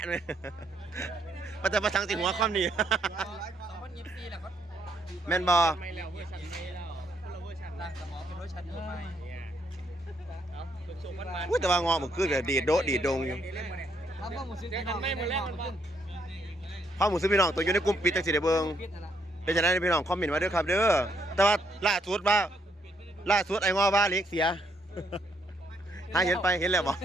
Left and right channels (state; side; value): normal; both; correlation 0.73